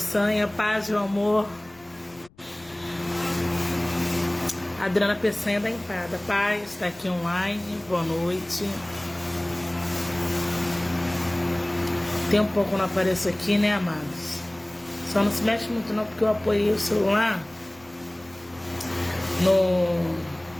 paz e amor. Adriana Peçanha da Empada, paz, está aqui online, boa noite. Tem um pouco que eu não apareço aqui, né, amados? Só não se mexe muito não, porque eu apoiei o celular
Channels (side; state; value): left; noise; rumble, 28 dB below the sound